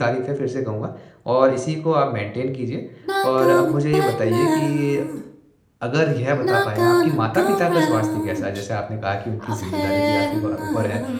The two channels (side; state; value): both; identical; correlation 1.00